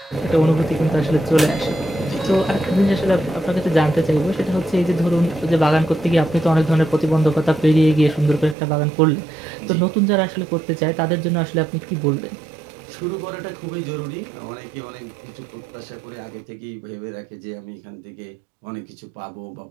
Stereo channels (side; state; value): left; drops out; at 8.6 s